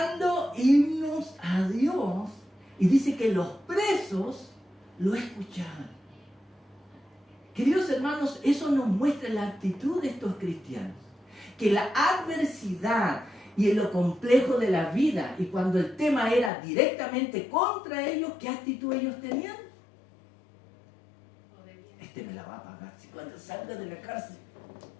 himnos a Dios. Y dice que los presos lo escuchaban. Queridos hermanos, eso nos muestra la actitud de estos cristianos. Que la adversidad y lo complejo de la vida, y cuando el tema era directamente contra ellos, ¿qué actitud ellos tenían? Este me la va a pagar. Si cuando salga de la cárcel,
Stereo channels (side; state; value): right; drops out; at 16.5 s